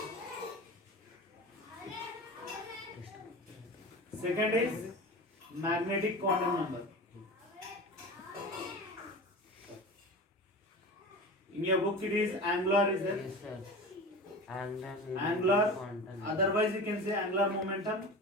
Second is magnetic quantum number. In your book it is angular, is there? Yes, sir. Angular. Quantum. Otherwise you can say angular momentum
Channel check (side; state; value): both; normal; correlation 0.32